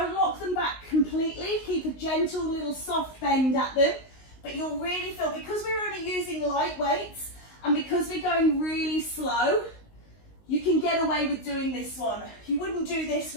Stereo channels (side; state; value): right; late; 19 ms